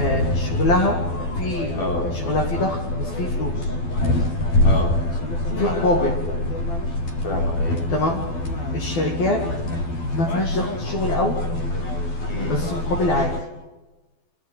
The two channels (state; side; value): late; right; 12 ms